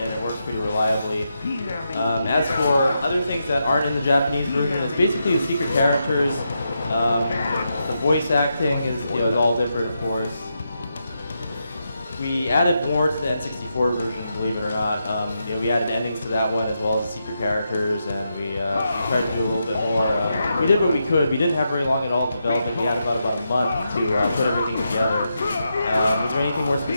it works pretty reliably. As for other things that aren't in the Japanese version, it's basically the secret characters. The voice acting is all different, of course. We added more to the N64 version, believe it or not. We added endings to that one as well as the secret characters, and we tried to do a little bit more. We did what we could. We didn't have very long at all in development. We had about a month to put everything together. Was there anything more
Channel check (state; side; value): inverted; both; correlation -0.84